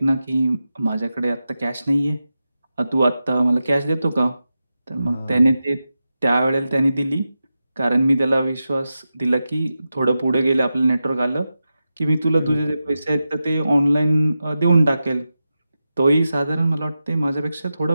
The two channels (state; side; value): inverted; both; correlation -0.91